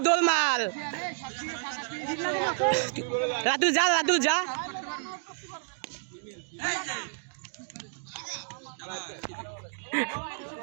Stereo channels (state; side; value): silent; left; digital silence